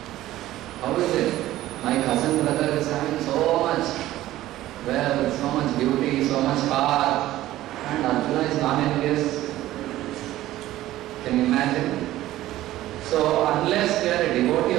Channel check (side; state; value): left; quieter; 15.1 dB